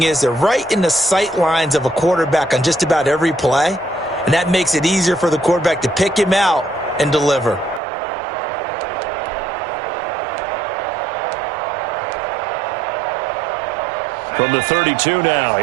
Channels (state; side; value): drops out; left; at 7.8 s